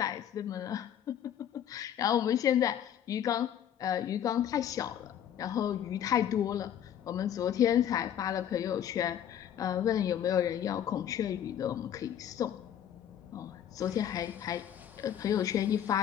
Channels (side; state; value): right; quieter; 9.9 dB